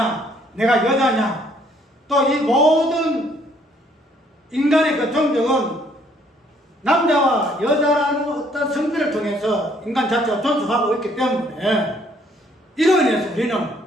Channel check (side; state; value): both; normal; correlation 0.64